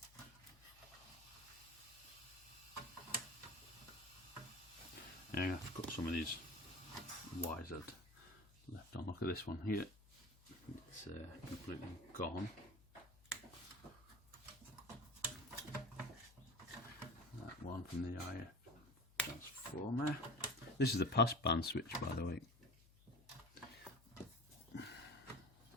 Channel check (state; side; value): noise; left; hum, 24 dB below the sound